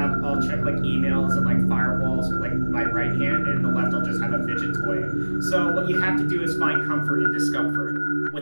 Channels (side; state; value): both; inverted; correlation -1.00